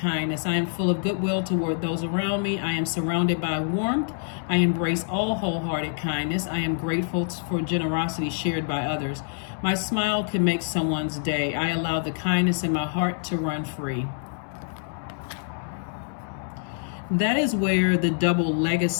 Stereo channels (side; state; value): right; silent; 60 dB below the other